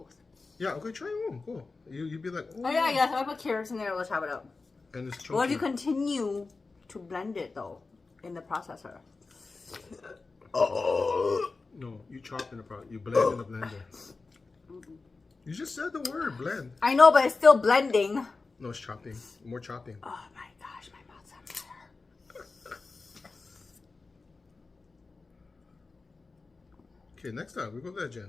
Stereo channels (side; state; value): right; quieter; 3.9 dB